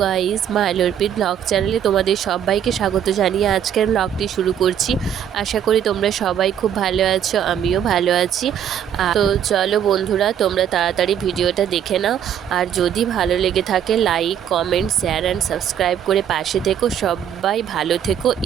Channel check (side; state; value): left; quieter; 9.3 dB